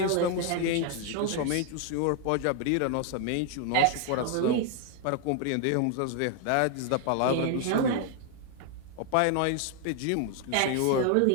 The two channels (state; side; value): different; both; correlation 0.00